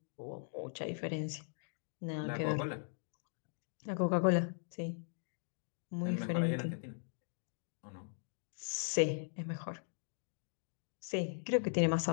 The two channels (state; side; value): silent; right; digital silence